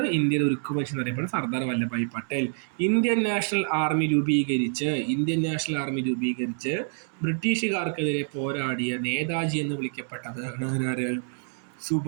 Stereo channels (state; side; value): silent; left; digital silence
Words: ഇന്ത്യയുടെ ഉരുക്കു മനുഷ്യൻ എന്നറിയപ്പെടുന്നത് Sardar Vallabhbhai Patel. Indian national army രൂപീകരിച്ച് ബ്രിട്ടീഷുകാർക്കെതിരെ പോരാടിയ നേതാജി എന്ന് വിളിക്കപ്പെട്ടത്